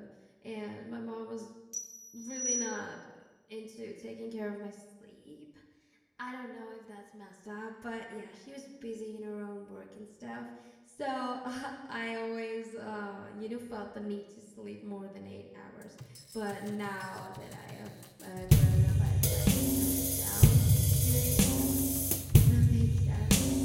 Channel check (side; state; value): both; identical; correlation 1.00